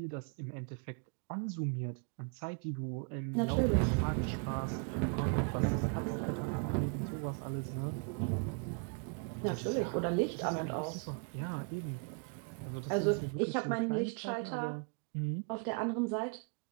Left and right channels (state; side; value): quieter; left; 37.1 dB